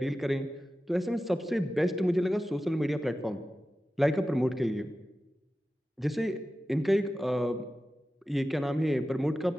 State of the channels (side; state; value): both; normal; correlation 0.94